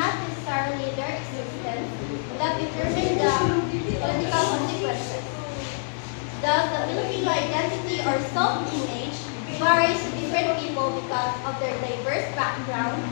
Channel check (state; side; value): silent; right; digital silence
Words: necessarily their existence, that determine the political consequences. Thus, the Filipino identity or self-image varies to different people because of their diverse background